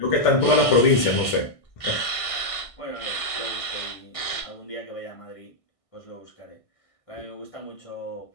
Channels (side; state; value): right; late; 1.6 ms